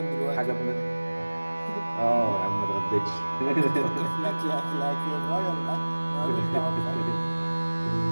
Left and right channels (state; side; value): inverted; both; correlation -1.00